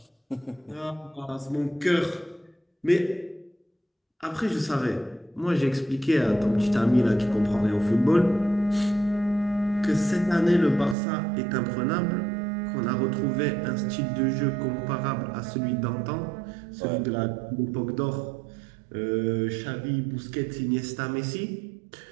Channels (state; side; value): drops out; left; at 11.0 s